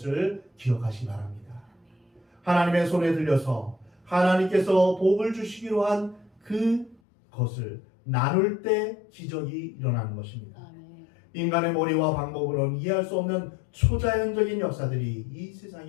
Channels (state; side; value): drops out; right; at 7.0 s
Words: 기억하시기 바랍니다. 하나님의 손에 들려서 하나님께서 복을 주시기로 한 그것을 나눌 때 기적이 일어나는 것입니다. 인간의 머리와 방법으로는 이해할 수 없는 초자연적인 역사들이 이